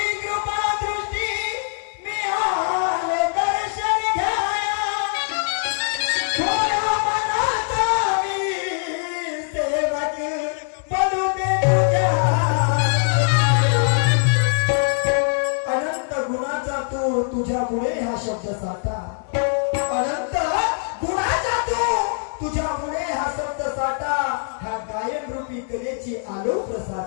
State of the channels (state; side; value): silent; right; 64 dB below the other